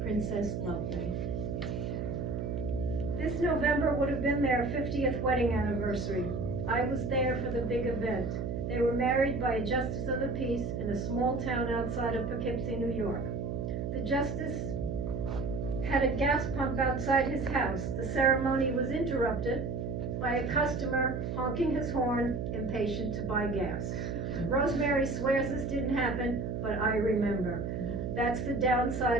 Princess Lovely. This November would have been their 50th wedding anniversary. I was there for the big event. They were married by a justice of the peace in a small town outside of Poughkeepsie, New York. The justice had a gas pump outside his house. The ceremony was interrupted by a customer honking his horn, impatient to buy gas. Rosemary swears this didn't happen, but I remember. That's the downside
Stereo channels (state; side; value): noise; right; hum, 3 dB below the sound